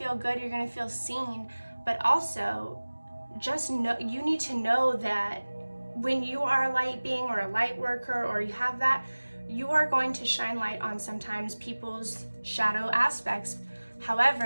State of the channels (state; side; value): inverted; both; correlation -1.00